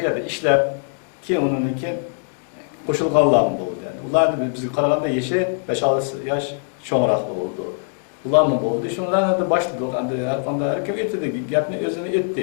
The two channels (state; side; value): silent; right; digital silence